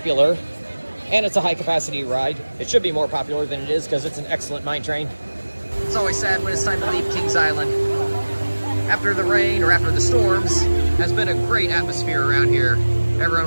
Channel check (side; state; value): both; inverted; correlation -1.00